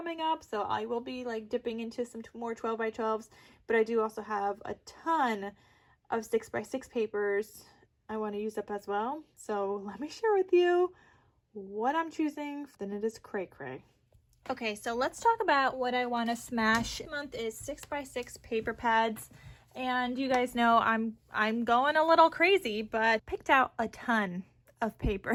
up. So I will be like dipping into some more 12 by 12s, but I do also have a ton of 6 by 6 papers I want to use up as well. So let me share with you what I'm choosing. Then it is cray cray. Okay, so let's talk about what I want to smash. This month is 6 by 6 paper pads. And you guys know I'm going a little crazy, but picked out a ton of paper,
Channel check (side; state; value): both; identical; correlation 1.00